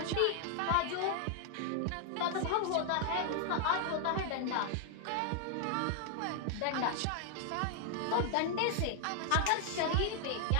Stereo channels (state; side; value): different; both; correlation 0.00